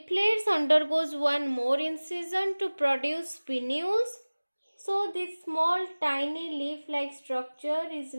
undergoes one more incision to produce pinnules. So this small tiny leaf-like structure is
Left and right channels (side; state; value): both; inverted; correlation -1.00